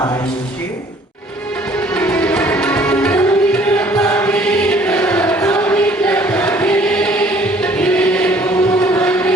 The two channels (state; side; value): normal; both; correlation 0.57